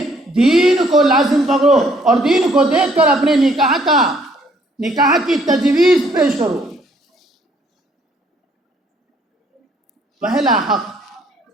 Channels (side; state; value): both; normal; correlation 0.64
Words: دین کو لازم پکڑو اور دین کو دیکھ کر اپنے نکاح کی تجویز پیش کرو۔ پہلا حق